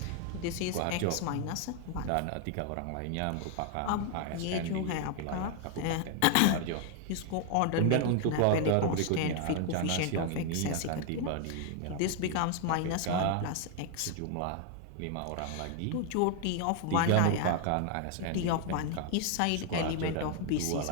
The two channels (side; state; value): both; different; correlation 0.00